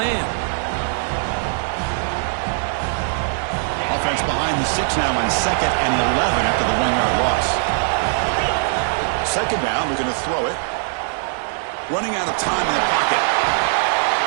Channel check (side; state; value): left; silent; 62 dB below the other